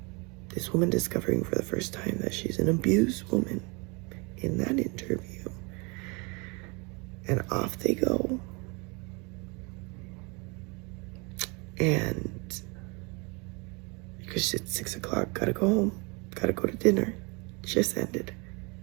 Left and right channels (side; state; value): left; quieter; 29.5 dB